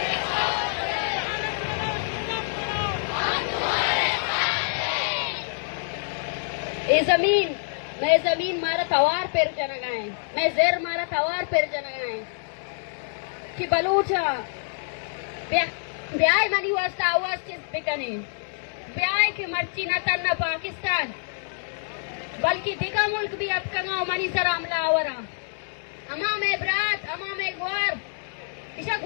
ये जमीन मैं जमीन मारा तवार पेर जनगाए मैं जेर मारा तवार पेर जनगाए कि बलूचा ब्याह मनी वास्ता आवाज किस बिकने ब्याह की मर्ची न तन्ना पाकिस्तान बल्कि दिगा मुल्क भी अब कंगाओ मनी सरा हमला आवरा अमा में ब्रात अमा में ग्वार इसा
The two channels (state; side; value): silent; right; digital silence